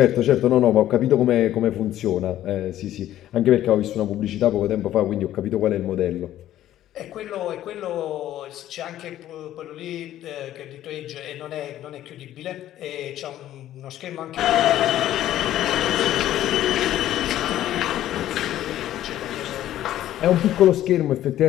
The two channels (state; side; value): quieter; right; 12.9 dB